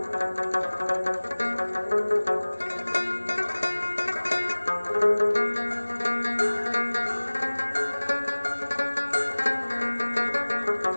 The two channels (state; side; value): inverted; both; correlation -1.00